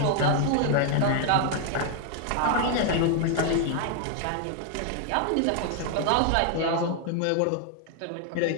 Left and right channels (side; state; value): both; different; correlation 0.00